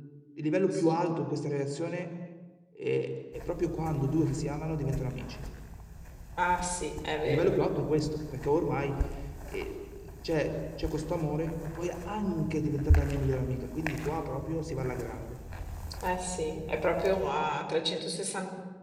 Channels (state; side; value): identical; both; correlation 1.00